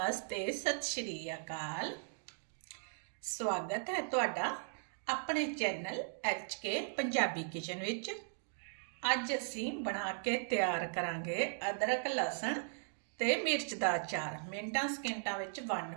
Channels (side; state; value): left; silent; digital silence